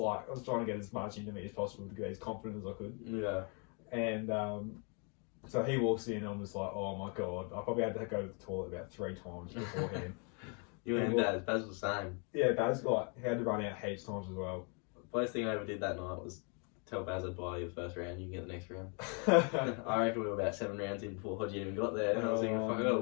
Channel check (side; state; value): right; quieter; 36.6 dB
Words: trying to get as much into me as possible to get as confident as I could. Yeah. And so he walks in, and I'm just like, oh my god, I probably had to go to the toilet about 3 times beforehand. You and Baz was the same. Yeah, Baz he had to run out heaps times as well. First thing I ever did that night was tell Baz I'd buy you the first round, you can get the next round. I reckon we were about 7 rounds in before Hodgie even got there, and I was thinking, fuck, I gotta